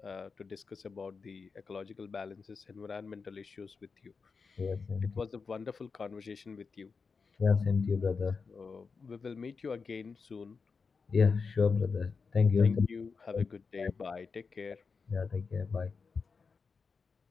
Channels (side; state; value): right; quieter; 5.0 dB